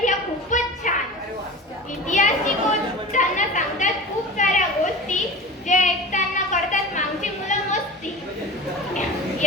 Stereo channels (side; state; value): both; normal; correlation 0.33